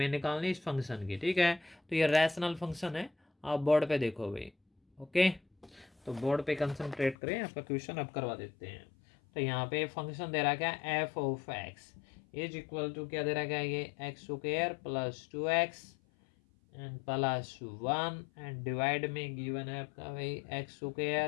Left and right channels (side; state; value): right; drops out; at 7.2 s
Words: निकालनी इस फंक्शन की, ठीक है। तो ये रैशनल फंक्शन है, आप बोर्ड पे देखो भाई, ओके। तो बोर्ड पे कंसंट्रेट करें, आपका क्वेश्चन अब करवा देते हैं। तो यहाँ पे फंक्शन दे रहा क्या, f of x is equal to क्या दे रहा क्या, ये x square plus 2x and plus 1 and divide में गिवन है आपका भाई x